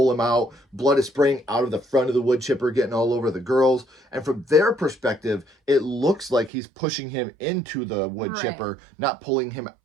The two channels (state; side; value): drops out; left; at 6.5 s